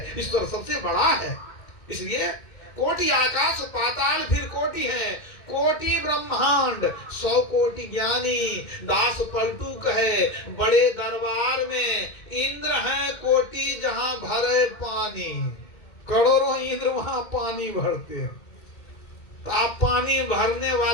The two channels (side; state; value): right; late; 2.1 ms